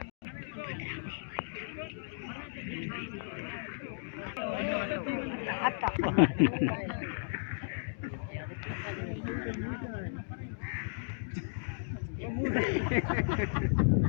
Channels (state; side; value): silent; right; digital silence